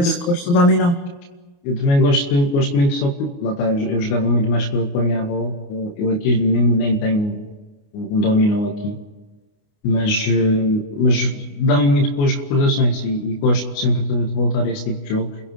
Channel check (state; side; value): late; right; 29 ms